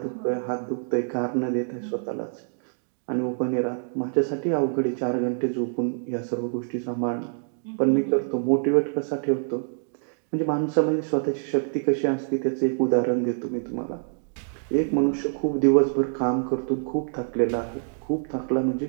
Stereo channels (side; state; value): left; silent; digital silence